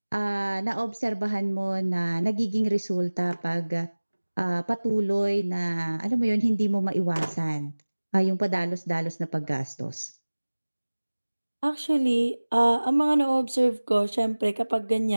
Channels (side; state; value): both; inverted; correlation -1.00